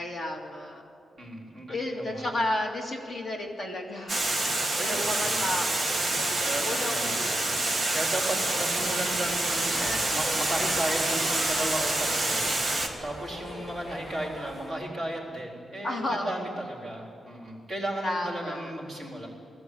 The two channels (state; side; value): normal; both; correlation 0.86